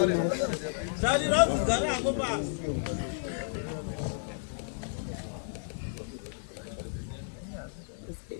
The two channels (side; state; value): right; silent; 56 dB below the other